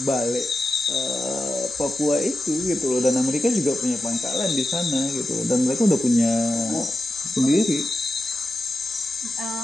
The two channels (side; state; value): both; normal; correlation 0.91